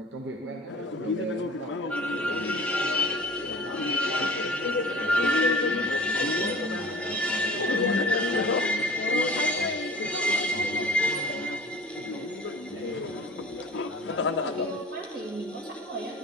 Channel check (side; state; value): both; normal; correlation 0.43